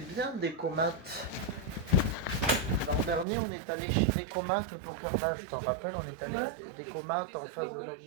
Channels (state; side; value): drops out; left; at 3.2 s